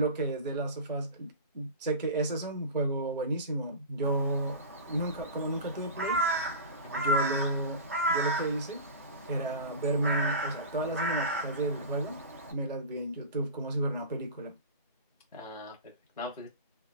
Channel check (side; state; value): both; inverted; correlation -0.31